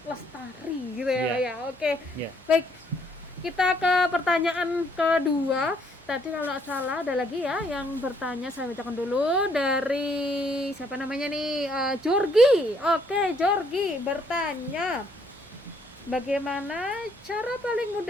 lestari gitu ya Pak ya. Oke. Ya. Baik, kita ke pertanyaan kedua. Tadi kalau nggak salah ada lagi ya yang bertanya, saya bacakan dulu dari siapa namanya nih, Jorgi. Oke, Jorgi bertanya, bagaimana cara paling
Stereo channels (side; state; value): both; normal; correlation 0.68